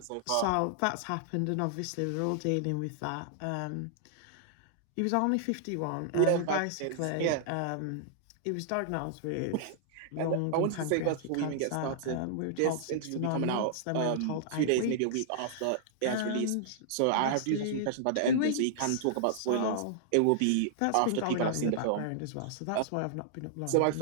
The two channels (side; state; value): both; different; correlation -0.01